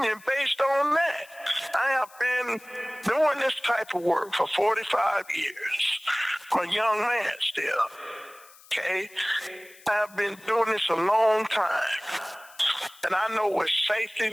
based on that. I have been doing this type of work for 45 years. I'm a young man still. Okay? I've been doing this a long time. And I know what safety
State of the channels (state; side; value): noise; left; hiss, 24 dB below the sound